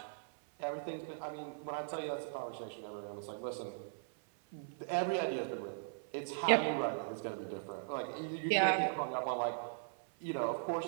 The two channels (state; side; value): silent; left; 52 dB below the other